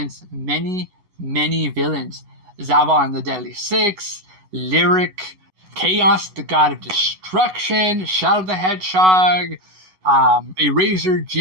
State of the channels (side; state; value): left; late; 11 ms